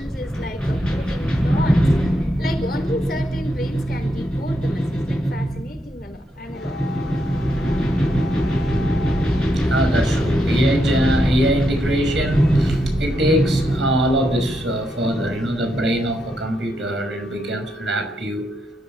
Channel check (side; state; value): both; normal; correlation 0.81